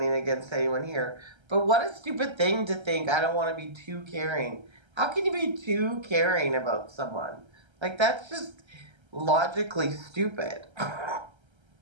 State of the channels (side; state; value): left; late; 1.3 ms